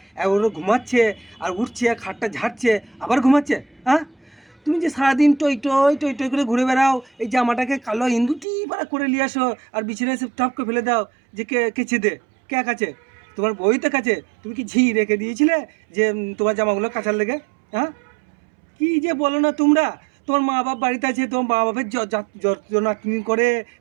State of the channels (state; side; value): drops out; left; at 8.5 s